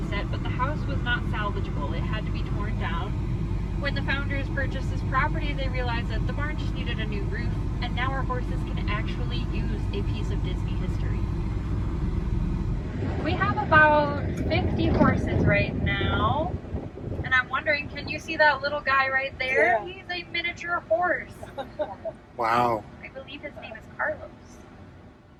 set, but the house was not salvageable. It had to be torn down. When the founders purchased this property, they realized that the barn just needed a new roof, and now our horses can actually use a piece of Disney history. We have about 50 horses right now, and I'm wondering, can you see that little guy right there? Yeah. He's a miniature horse. Wow. I believe his name is Carlos.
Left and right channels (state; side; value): identical; both; correlation 1.00